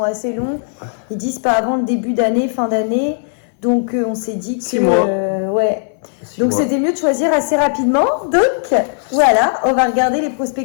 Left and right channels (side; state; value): right; silent; 68 dB below the other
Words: assez longs. Ils disent pas avant le début d'année, fin d'année. Donc on s'est dit que 6 mois. Ouais. Donc c'était mieux de choisir assez rapidement. Donc voilà, on va regarder les